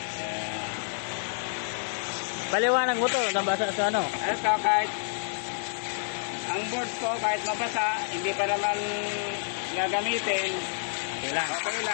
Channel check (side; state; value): right; silent; digital silence